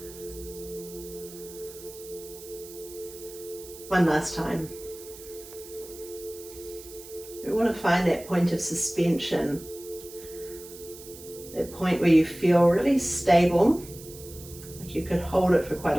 One last time. We want to find that point of suspension, that point where you feel really stable, like you could hold it for quite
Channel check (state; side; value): noise; right; hiss, 16 dB below the sound